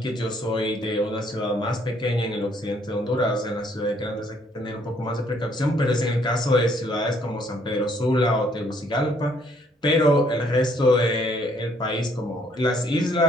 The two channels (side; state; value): both; normal; correlation 0.66